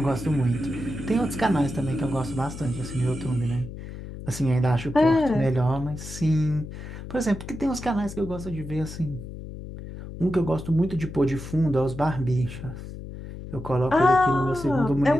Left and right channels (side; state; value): left; noise; hum, 11 dB below the sound